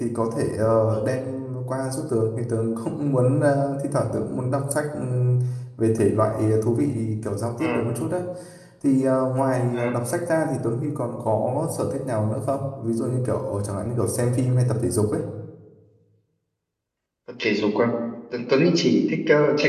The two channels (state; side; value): identical; both; correlation 1.00